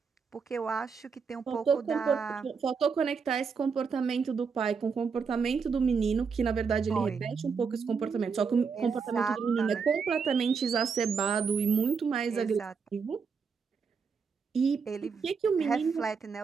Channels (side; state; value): left; quieter; 5.6 dB